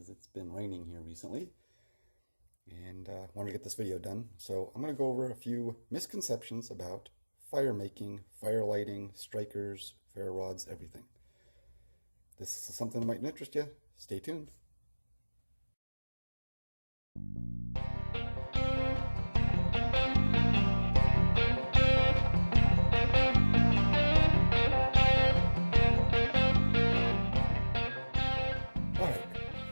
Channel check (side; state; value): both; inverted; correlation -1.00